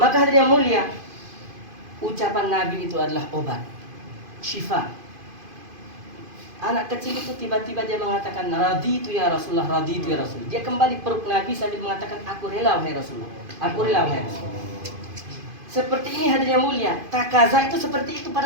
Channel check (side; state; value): left; late; 2.5 ms